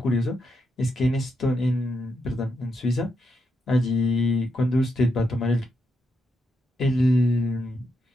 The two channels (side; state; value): both; normal; correlation 0.82